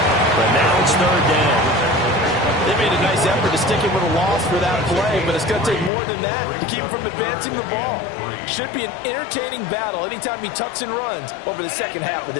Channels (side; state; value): right; drops out; at 5.9 s